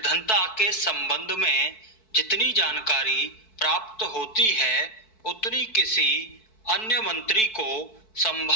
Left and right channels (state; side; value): late; right; 4.6 ms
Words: के संबंध में जितनी जानकारी प्राप्त होती है उतनी किसी अन्य मंत्री को